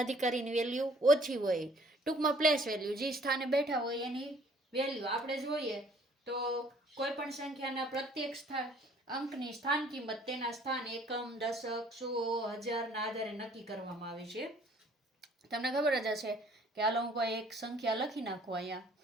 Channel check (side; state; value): both; normal; correlation 0.57